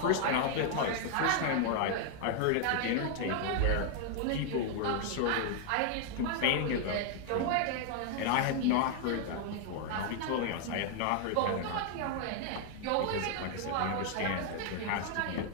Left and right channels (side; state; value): both; different; correlation 0.00